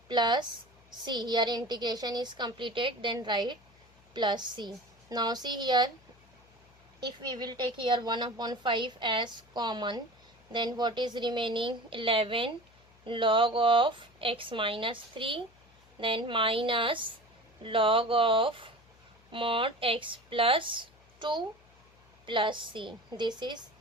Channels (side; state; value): left; noise; hum, 29 dB below the sound